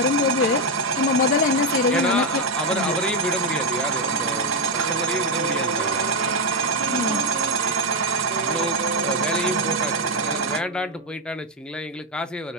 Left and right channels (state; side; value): normal; both; correlation 0.05